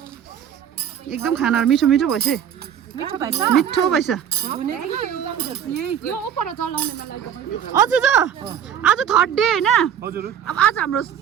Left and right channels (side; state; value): left; quieter; 9.0 dB